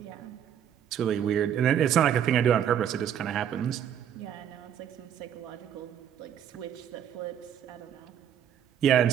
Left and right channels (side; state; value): left; quieter; 9.4 dB